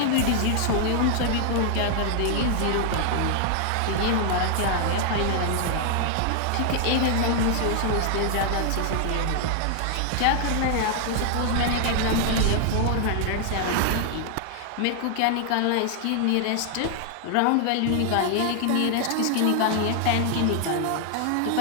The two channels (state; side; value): different; both; correlation 0.00